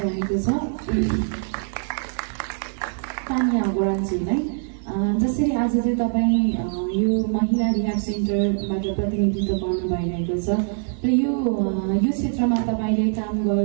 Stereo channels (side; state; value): left; silent; 60 dB below the other